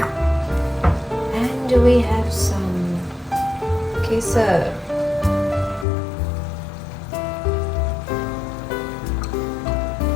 And we have some kesar.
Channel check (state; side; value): drops out; right; at 5.9 s